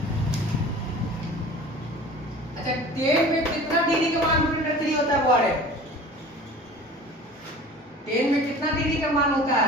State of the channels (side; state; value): both; normal; correlation 0.41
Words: अच्छा tan में कितना डिग्री का मान इंटरनल 3 होता है बुआड़े? tan में कितना डिग्री का मान होता है